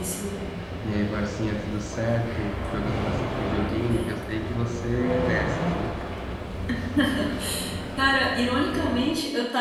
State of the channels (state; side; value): identical; both; correlation 1.00